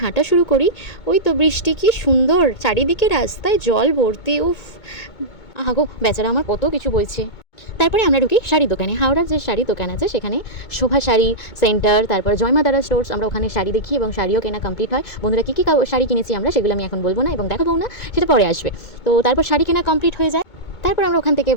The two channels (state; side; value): late; right; 2.2 ms